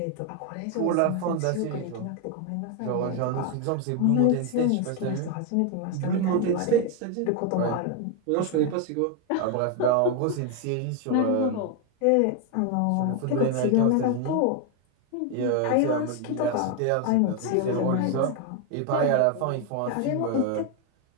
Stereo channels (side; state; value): both; different; correlation 0.01